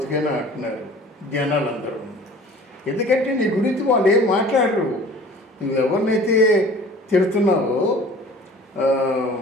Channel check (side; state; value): both; normal; correlation 0.45